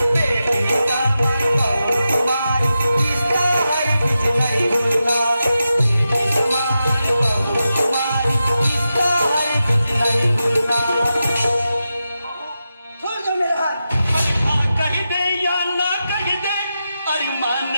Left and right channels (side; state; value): both; inverted; correlation -0.90